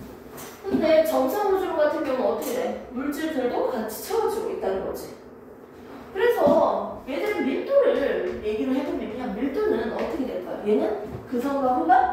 근데 정상 우주론 같은 경우는 어떻게 돼? 물질들도 같이 채워지고 있다는 거지. 그래서 얘들은 밀도를 얘기를 해보면 그냥 밀도는 어떻게 될까요? 얘는 그선과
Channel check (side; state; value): both; identical; correlation 1.00